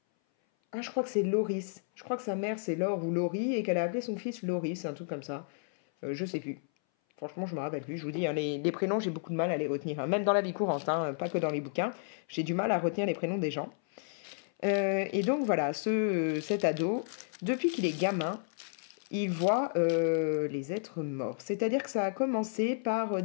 Ah, je crois que c'est Loris. Je crois que sa mère c'est Laure ou Laurie et qu'elle a appelé son fils Loris, un truc comme ça. Je sais plus. Franchement, je me rappelle plus. Je vous dis, hein, les prénoms, j'ai beaucoup de mal à les retenir, hein. Même dans la vie courante, hein, pas que dans les bouquins. J'ai du mal à retenir les prénoms des gens. Et donc voilà, cet ado, depuis qu'il est gamin, il voit les êtres morts. C'est-à-dire que ça a commencé par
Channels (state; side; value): silent; right; 56 dB below the other